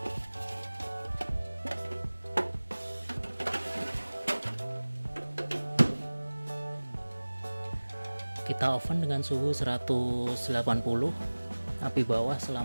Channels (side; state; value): both; inverted; correlation -1.00